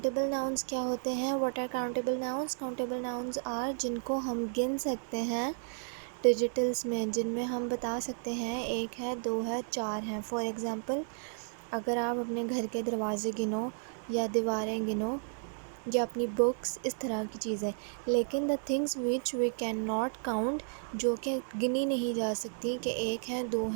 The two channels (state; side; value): silent; left; 55 dB below the other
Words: नाउन्स क्या होते हैं? What are countable nouns? Countable nouns are जिनको हम गिन सकते हैं डिजिटल्स में, जिनमें हम बता सकते हैं 1 है, 2 है, 4 हैं। फॉर एग्ज़ाम्पल, अगर आप अपने घर के दरवाजे गिनो या दीवारें गिनो या अपनी बुक्स, इस तरह की चीज़ें। लेकिन the things which we can not count, जो कि गिनी नहीं जा सकती कि 1 है, 2